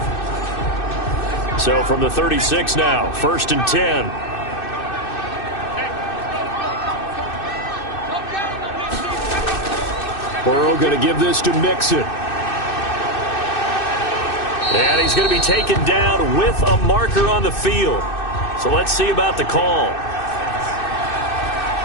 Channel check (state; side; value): late; right; 2.6 ms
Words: So from the 36 now, 1st and 10. Burrow going to give this to Mixon. And he's going to be taken down with a marker on the field. So let's see about the call.